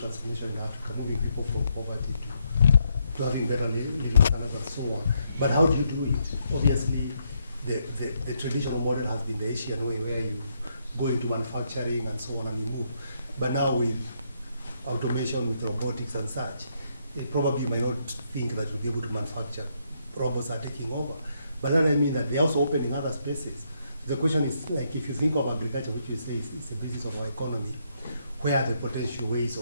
in Africa, moving people from poverty to having better living standards and so on. But how do you do it? Obviously, the traditional model has been the Asian way, where you go into manufacturing and so on and you move. But now with automation, with robotics and such, probably you might not think that you'll be able to manufacture. Robots are taking over. But then I mean that they also open in other spaces. The question is, like, if you think of agriculture, which you say is the basis of our economy, where are the potential ways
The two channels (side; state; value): both; inverted; correlation -0.76